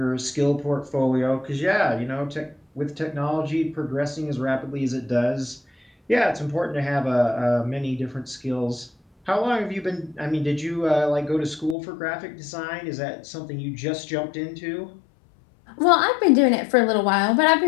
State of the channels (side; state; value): right; drops out; at 11.8 s